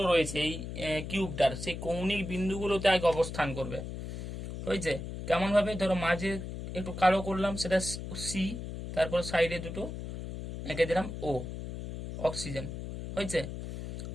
রয়েছে এই কিউবটার, সেই কৌণিক বিন্দুগুলোতে আগে অবস্থান করবে হয়েছে। কেমন ভাবে, ধরো মাঝে একটু কালো করলাম সেটা সি, তারপর সাইডে দুটো এঁকে দিলাম ও, অক্সিজেন হয়েছে।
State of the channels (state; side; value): noise; left; hum, 7 dB below the sound